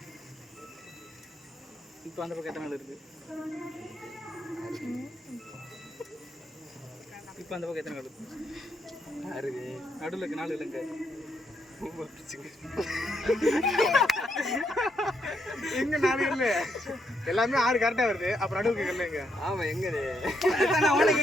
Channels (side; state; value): both; normal; correlation 0.77